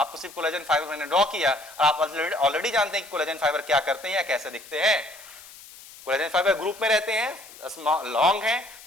सिर्फ कोलेजन फाइबर मैंने ड्रॉ किया और आप ऑलरेडी जानते हैं कि कोलेजन फाइबर क्या करते हैं या कैसे दिखते हैं। कोलेजन फाइबर ग्रुप में रहते हैं, लॉन्ग है,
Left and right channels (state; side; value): noise; left; hiss, 19 dB below the sound